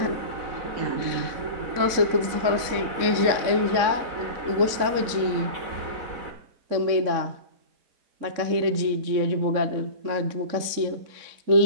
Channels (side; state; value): left; late; 3.7 ms